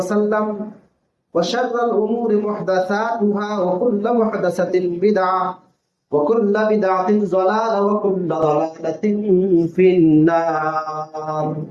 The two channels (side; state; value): both; identical; correlation 1.00